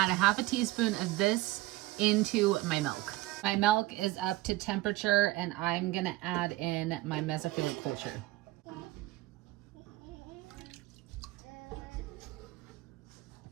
a ½ teaspoon of this into my milk. My milk is up to temperature and I'm gonna add in my mesophilic culture.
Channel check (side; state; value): left; quieter; 18.0 dB